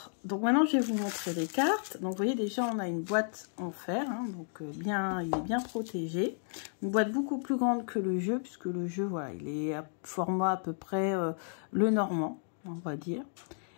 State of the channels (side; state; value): right; silent; digital silence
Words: donc maintenant je vais vous montrer les cartes. Donc vous voyez déjà on a une boîte en fer, donc il est bien protégé. Une boîte beaucoup plus grande que le jeu, puisque le jeu il est à format à peu près le normand, on va dire.